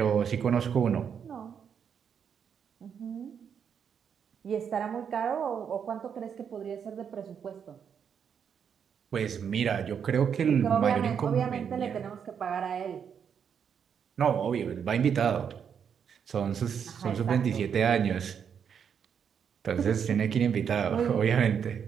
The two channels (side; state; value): left; quieter; 7.5 dB